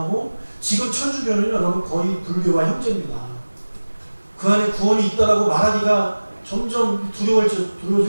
지금 천주교는 여러분 거의 불교와 형제입니다. 그 안에 구원이 있다라고 말하기가 점점 두려워질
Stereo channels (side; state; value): both; inverted; correlation -1.00